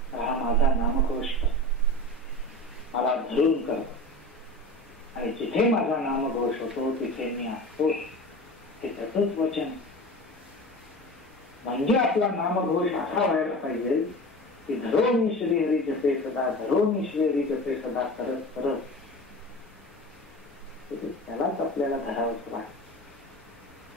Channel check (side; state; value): both; normal; correlation 0.33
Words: हा माझा नामघोष मला धरून करतो, आणि जिथे माझा नामघोष होतो तिथे मी असतो, हे त्याचंच वचन. म्हणजे आपला नामघोष असा व्हायला पाहिजे की धरोनी श्रीहरी जपे सदा, धरोनी श्रीहरी जपे सदा करत करत त्यालाच आपल्याला धरावंच वाटतं.